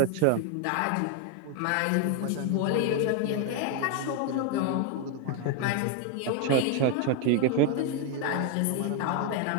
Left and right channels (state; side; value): different; both; correlation 0.01